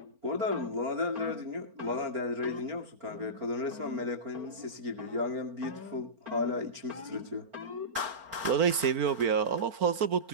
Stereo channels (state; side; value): late; left; 4.4 ms